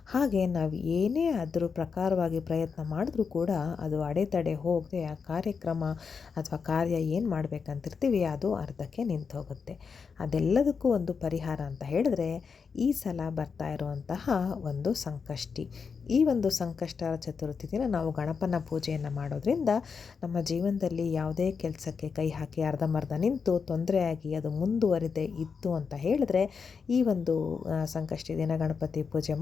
ಹಾಗೆ ನಾವು ಏನೇ ಅದ್ರ ಪ್ರಕಾರವಾಗಿ ಪ್ರಯತ್ನ ಮಾಡಿದ್ರೂ ಕೂಡ ಅದು ಅಡೆತಡೆ ಹೋಗದೆ ಆ ಕಾರ್ಯಕ್ರಮ ಅಥವಾ ಕಾರ್ಯ ಏನು ಮಾಡಬೇಕಂತಿರ್ತೀವಿ ಅದು ಅರ್ಧಕ್ಕೆ ನಿಂತೋಗುತ್ತೆ. ಅದೆಲ್ಲದಕ್ಕೂ ಒಂದು ಪರಿಹಾರ ಅಂತ ಹೇಳಿದ್ರೆ ಈ ಸಲ ಬರ್ತಾ ಇರುವಂತಹ ಒಂದು ಸಂಕಷ್ಟಿ. ಈ ಒಂದು ಸಂಕಷ್ಟರ ಚತುರ್ಥಿ ದಿನ ನಾವು ಗಣಪನ ಪೂಜೆಯನ್ನು ಮಾಡೋದ್ರಿಂದ ನಮ್ಮ ಜೀವನದಲ್ಲಿ ಯಾವುದೇ ಕೆಲಸಕ್ಕೆ ಕೈ ಹಾಕಿ ಅರ್ಧಂಬರ್ಧ ನಿಂತು ತೊಂದರೆಯಾಗಿ ಅದು ಮುಂದುವರಿದೇ ಇತ್ತು ಅಂತ ಹೇಳಿದ್ರೆ ಈ ಒಂದು ಸಂಕಷ್ಟಿ ದಿನ ಗಣಪತಿ ಪೂಜೆ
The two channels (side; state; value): right; quieter; 5.7 dB